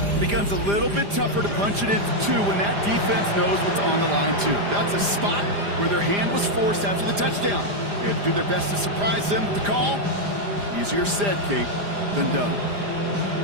It becomes a little bit tougher to punch it into 2 when that defense knows what's on the line, too. That's a spot where their hand was forced after the touchdown. They had to do their best to surprise them with the call. Easier said, Kate, than done.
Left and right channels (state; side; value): late; left; 5.0 ms